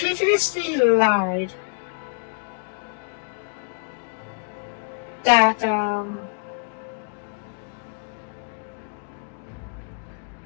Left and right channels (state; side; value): quieter; right; 39.3 dB